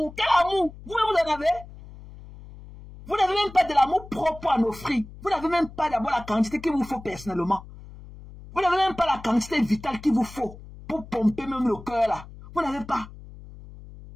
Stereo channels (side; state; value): left; noise; hum, 17 dB below the sound